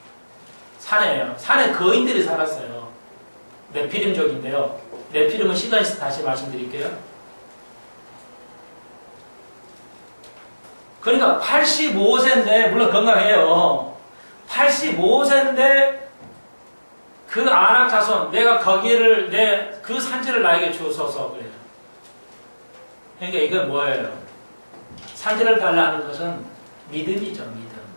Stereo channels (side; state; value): both; inverted; correlation -1.00